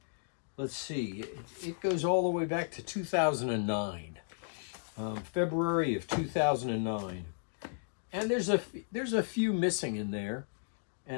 let's see, it goes all the way back to 2009, February of 2009. And there's a few missing in there,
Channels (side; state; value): right; silent; digital silence